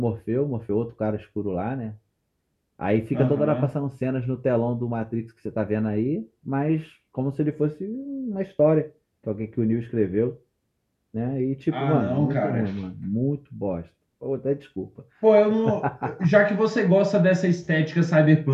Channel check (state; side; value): identical; both; correlation 1.00